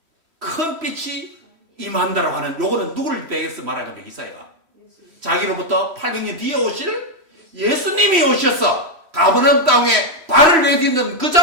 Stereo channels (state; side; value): late; left; 3.1 ms